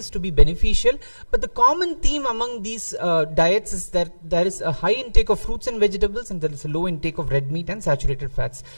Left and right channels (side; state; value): both; inverted; correlation -1.00